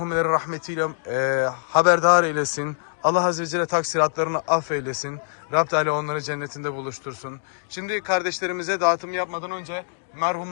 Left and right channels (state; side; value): silent; right; digital silence